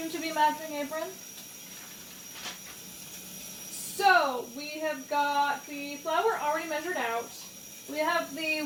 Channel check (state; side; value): identical; both; correlation 1.00